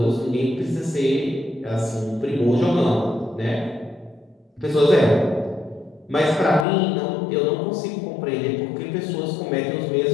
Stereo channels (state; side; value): drops out; right; at 6.7 s